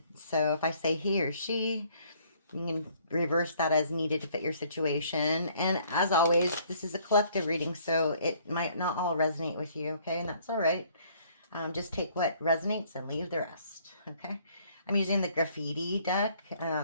So if I say he or she, you can reverse that as needed to fit your situation. And as always, this is a collective reading, so it might not all resonate with you, okay? And that's all right. Just take what resonates and leave the rest, okay? I'm using the graffiti deck.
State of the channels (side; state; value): both; inverted; correlation -0.61